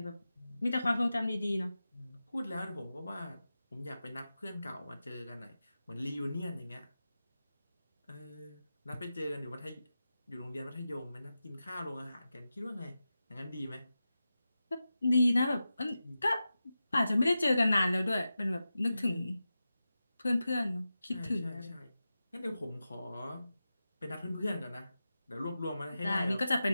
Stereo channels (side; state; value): both; inverted; correlation -0.92